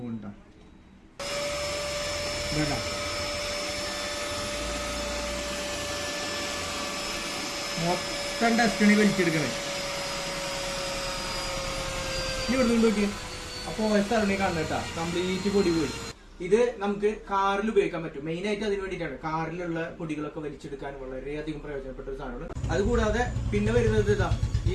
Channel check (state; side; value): identical; both; correlation 1.00